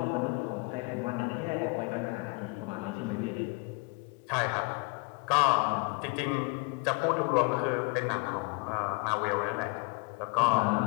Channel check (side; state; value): right; quieter; 30.4 dB